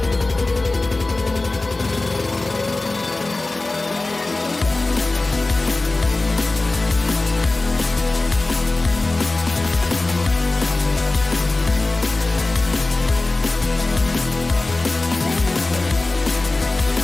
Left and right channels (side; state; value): right; quieter; 3.1 dB